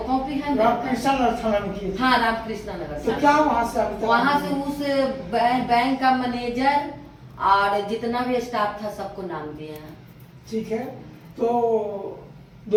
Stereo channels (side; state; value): both; identical; correlation 1.00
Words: कॉपी है। रामकृष्णा नगर थाना में किए। हाँ रामकृष्णा नगर। तो क्या वहाँ से उस बैंक का मैनेजर और जितना भी स्टाफ था सबको नाम दिए हैं। ठीक है, तो